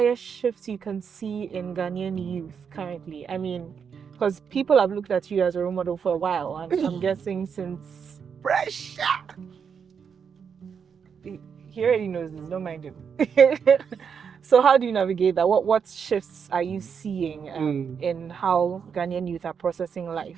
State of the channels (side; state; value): left; quieter; 6.7 dB